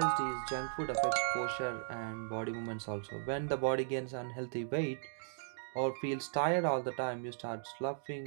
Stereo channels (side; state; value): left; silent; digital silence